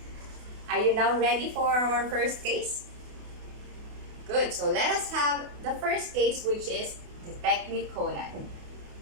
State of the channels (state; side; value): late; left; 28 ms